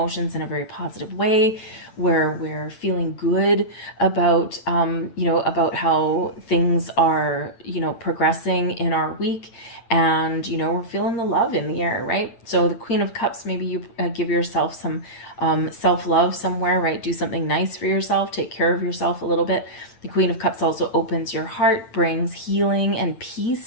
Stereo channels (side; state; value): right; late; 8.6 ms